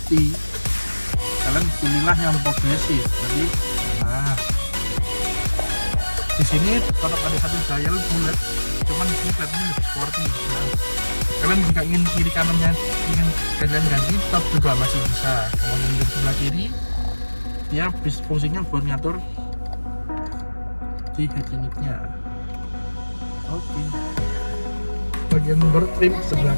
kalian pilihlah yang progresif. Jadi nah di sini tetap ada satu dial bulat, cuman di sini kelihatannya lebih sporty. Nah, kalian jika ingin kiri kanannya ingin kalian ganti tetap juga masih bisa. Kemudian di sebelah kiri dia fungsinya buat ngatur di head unitnya. Oke. Bagian door trim sebelah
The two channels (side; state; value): both; inverted; correlation -1.00